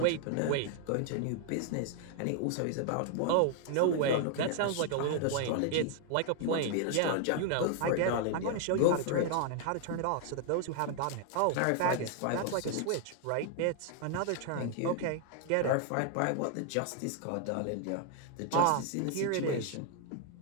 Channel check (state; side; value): different; both; correlation 0.00